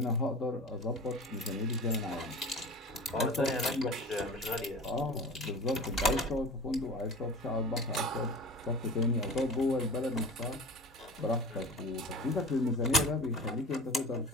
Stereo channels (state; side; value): normal; both; correlation 0.36